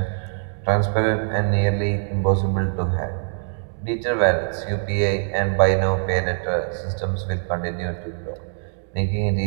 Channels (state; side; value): silent; left; digital silence